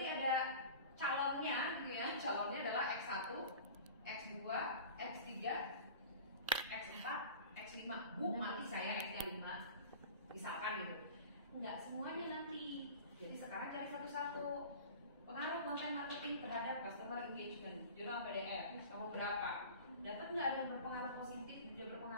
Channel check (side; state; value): both; inverted; correlation -0.39